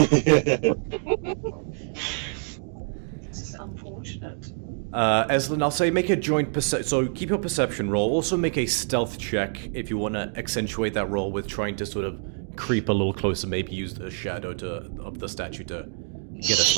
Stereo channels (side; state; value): left; silent; 61 dB below the other